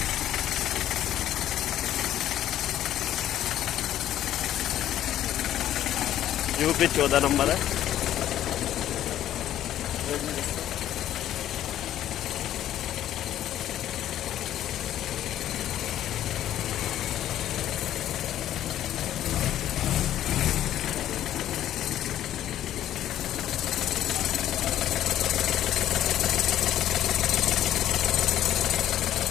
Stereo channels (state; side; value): quieter; right; 12.0 dB